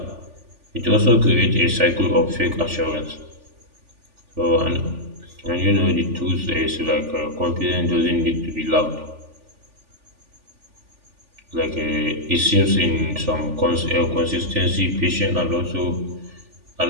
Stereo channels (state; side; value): late; left; 3.4 ms